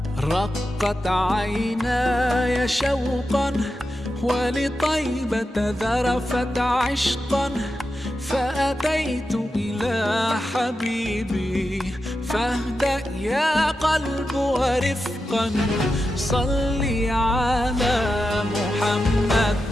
رقت عيناي شوقا ولطيبة ذرفت عشقا، فأتيت إلى حبيبي فاهدأ يا قلب ورفقا. صلي على محمد.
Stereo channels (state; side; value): normal; both; correlation 0.90